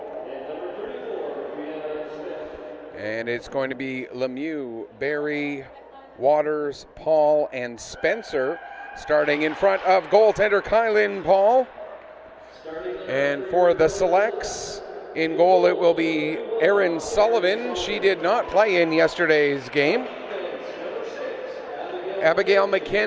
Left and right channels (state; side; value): identical; both; correlation 1.00